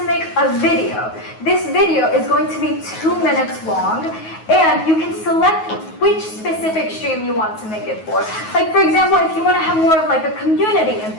make a video. This video is going to be 2 minutes long, and you can select which specific stream you want to make it for. Like for example, if you want to have more of like a community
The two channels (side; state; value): right; late; 9.4 ms